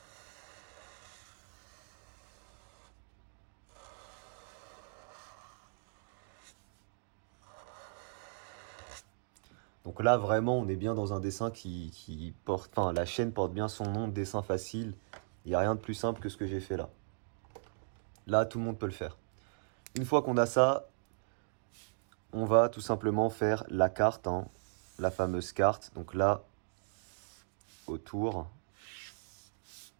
Donc là, vraiment, on est bien dans un dessin qui porte... Enfin, la chaîne porte bien son nom, dessin facile. Il n'y a rien de plus simple que ce que j'ai fait là. Là, tout le monde peut le faire. Une fois qu'on a ça, on va tout simplement faire la carte, la fameuse carte. Donc là, autour.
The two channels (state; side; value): silent; left; digital silence